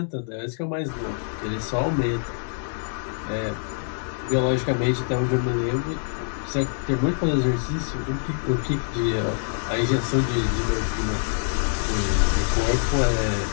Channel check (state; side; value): silent; right; digital silence